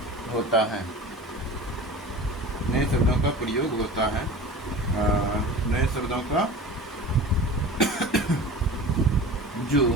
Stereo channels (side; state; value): both; normal; correlation 0.36